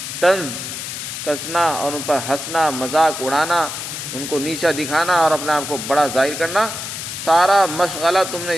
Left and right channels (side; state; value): left; noise; hiss, 7 dB below the sound